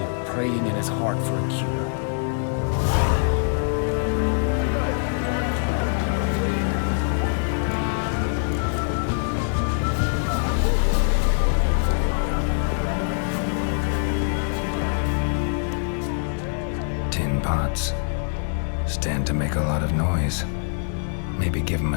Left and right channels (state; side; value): silent; right; 63 dB below the other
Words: praying in his heart for a cure. Stand to make a lot of noise. Maybe give him